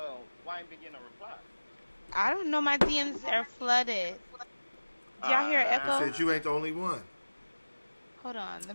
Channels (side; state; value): both; inverted; correlation -1.00